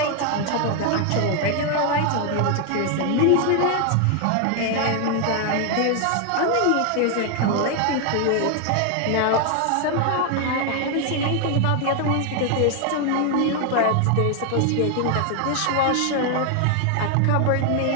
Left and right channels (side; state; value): both; different; correlation 0.00